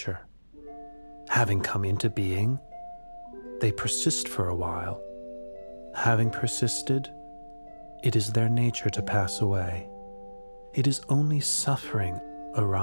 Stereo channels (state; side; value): inverted; both; correlation -1.00